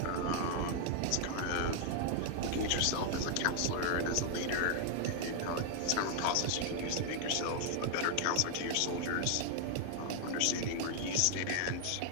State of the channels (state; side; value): different; both; correlation 0.00